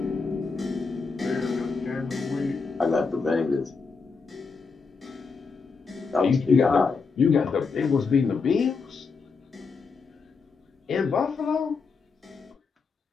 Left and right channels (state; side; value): quieter; right; 4.8 dB